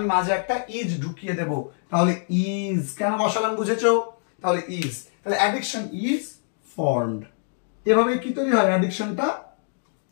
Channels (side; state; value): right; silent; digital silence